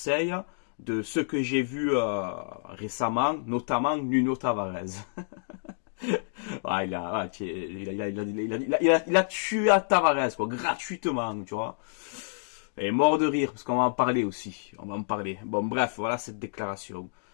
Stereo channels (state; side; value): silent; right; digital silence